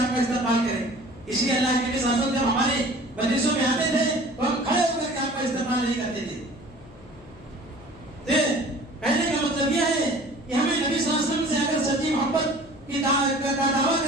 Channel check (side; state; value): left; noise; hum, 22 dB below the sound